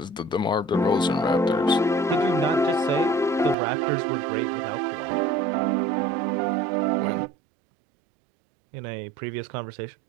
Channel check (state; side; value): drops out; left; at 3.6 s